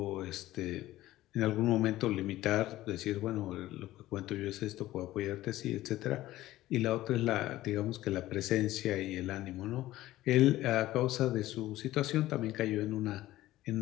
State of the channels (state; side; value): quieter; right; 15.7 dB